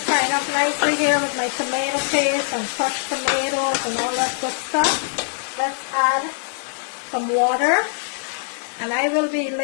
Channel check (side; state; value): right; silent; 64 dB below the other